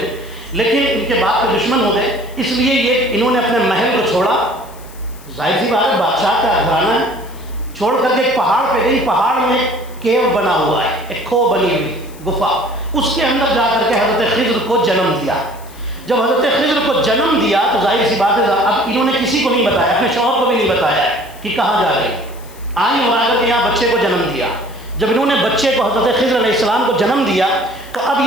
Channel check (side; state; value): left; noise; hiss, 23 dB below the sound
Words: لیکن ان کے باپ کے دشمن ہو گئے, اس لیے یہ انہوں نے اپنے محل کو چھوڑا. ظاہر سی بات ہے, بادشاہ کا گھرانہ ہے, چھوڑ کر کے ایک پہاڑ پہ گئی. پہاڑ میں کیو بنا ہوا ہے, ایک کھو بنی ہوئی گفا, اس کے اندر جا کر کے حضرت خضر کو جنم دیا. جب حضرت خضر کو جنم دیا تو ظاہر سی بات ہے اب انہوں نے کسی کو نہیں بتایا، اپنے شوہر کو بھی نہیں بتایا کہ کہاں جا رہی، آئیں اور آ کر کے یہاں بچے کو جنم دیا۔ جب انہوں نے بچے کو حضرت خضر علیہ السلام کو جنم دیا تو اب